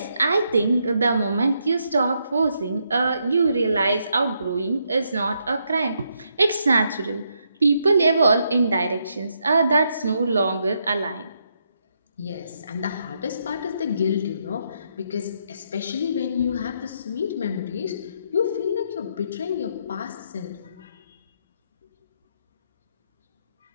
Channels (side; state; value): both; inverted; correlation -0.78